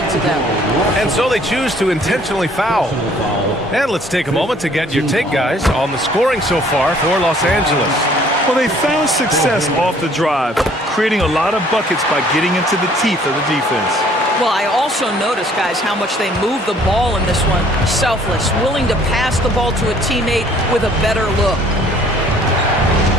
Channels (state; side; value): normal; both; correlation 0.58